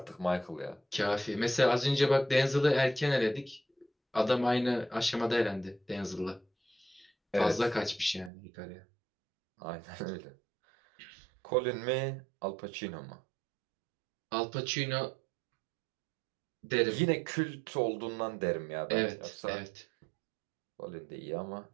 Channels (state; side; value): drops out; left; at 8.3 s